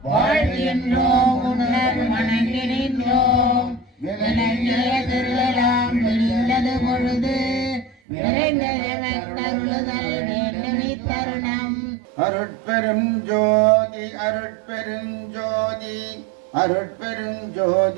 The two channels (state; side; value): drops out; left; at 8.0 s